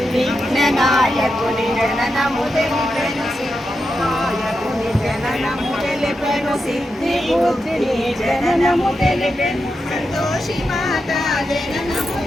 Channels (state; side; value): normal; both; correlation 0.87